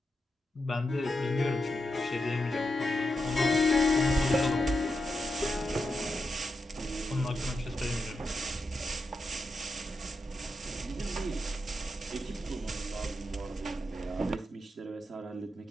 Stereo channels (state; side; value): normal; both; correlation 0.87